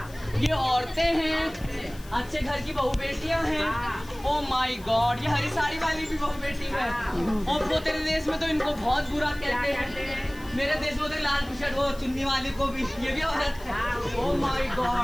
ये औरतें हैं, अच्छे घर की बहू बेटियां हैं। ओ माय गॉड, ये हरी साड़ी वाली भी बहू बेटी है। और वो तेरे देश में तो इनको बहुत बुरा कहते हैं। मेरे देश में तो लाल टी शर्ट वो चुन्नी वाली को भी, ये भी औरत है। ओ माय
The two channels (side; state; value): left; noise; hiss, 21 dB below the sound